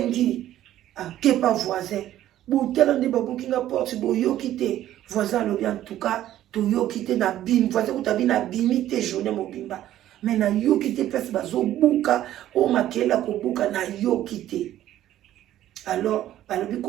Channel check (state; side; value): quieter; left; 12.9 dB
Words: akepa voisin botala nde babuki nga porte boyoki te voisin alobi en tout cas toyoki te na bimi voisin kutabi na bimi te journée mobimba mais na yoki te place bazobuka o makela kobuka na yoki te alors balobi